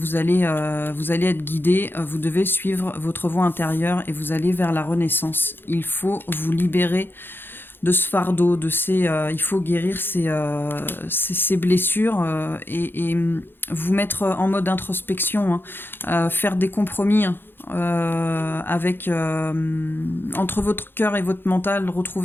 allez être guidé, vous devez suivre votre voie intérieure et vous allez vers la renaissance. Il faut vous libérer de ce fardeau, il faut guérir ces blessures et vous mettre en mode introspection, hein, faire des compromis, hein, entre votre cœur et votre mental,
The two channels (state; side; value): late; right; 0.10 ms